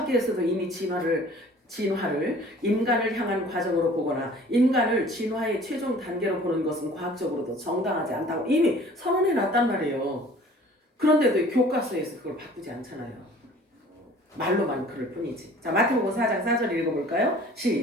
이미 진화를 인간을 향한 과정으로 보거나 인간을 진화의 최종 단계로 보는 것은 과학적으로도 정당하지 않다고 이미 선언해 놨단 말이에요. 그런데도 교과서에서 그걸 바꾸지 않잖아요. 말로만 그럴 뿐이지. 자, 마태복음 4장 4절 읽어볼까요?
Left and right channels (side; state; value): both; normal; correlation 0.49